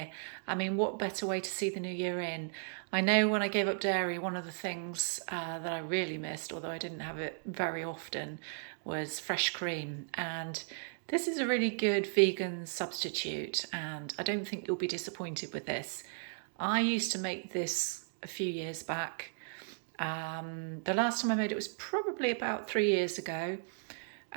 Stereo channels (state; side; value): silent; left; digital silence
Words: I mean, what better way to see the new year in? I know when I gave up dairy, one of the things that I really missed, although I didn't have it very often, was fresh cream. And this is a really good vegan substitute, and I don't think you'll be disappointed with this. I used to make this a few years back. The last time I made it was probably about 3 years ago,